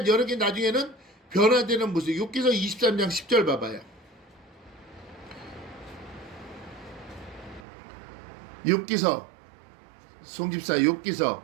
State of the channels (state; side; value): drops out; left; at 7.7 s